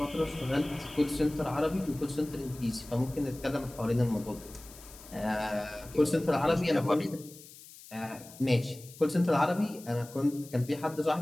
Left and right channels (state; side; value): noise; left; hiss, 19 dB below the sound